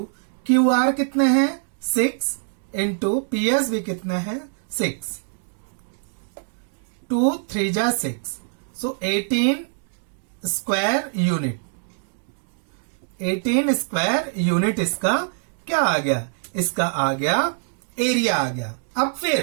QR कितने हैं 6 इंटू PS भी कितना है 6, 2 3 जा 6. सो 18 स्क्वायर यूनिट, 18 स्क्वायर यूनिट इसका क्या आ गया, इसका आ गया एरिया आ गया. अब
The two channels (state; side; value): silent; left; digital silence